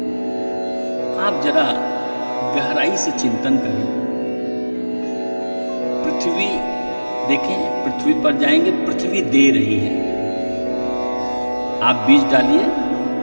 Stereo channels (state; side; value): inverted; both; correlation -1.00